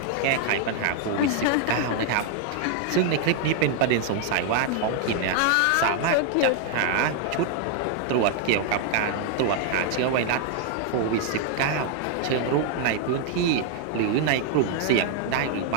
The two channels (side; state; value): both; different; correlation 0.00